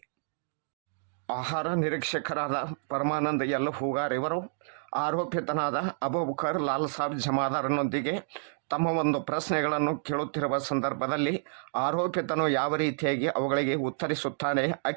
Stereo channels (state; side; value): silent; left; digital silence